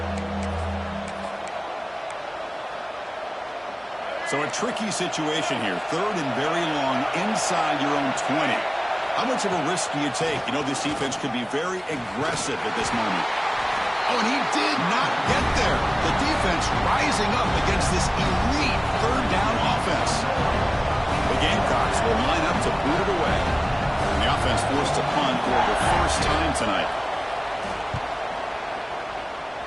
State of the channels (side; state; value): both; identical; correlation 1.00